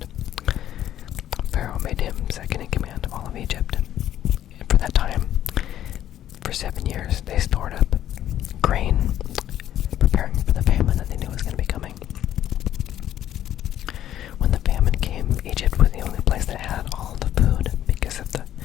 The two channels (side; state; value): right; quieter; 11.7 dB